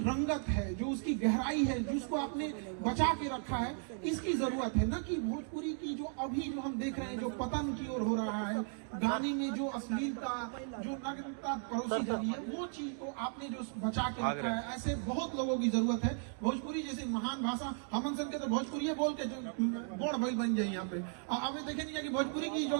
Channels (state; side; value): silent; left; 54 dB below the other